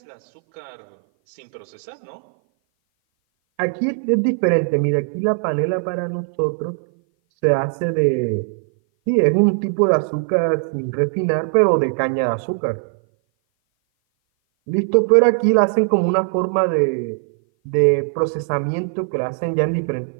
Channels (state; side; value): silent; left; 57 dB below the other